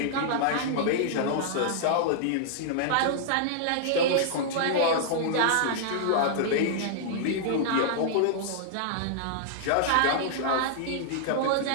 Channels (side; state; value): both; different; correlation -0.01